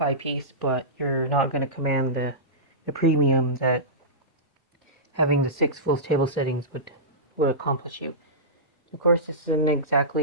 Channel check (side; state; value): both; normal; correlation -0.17